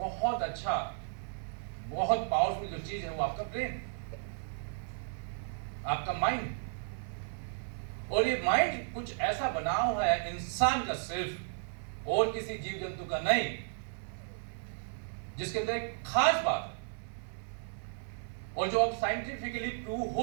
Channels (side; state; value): left; silent; 55 dB below the other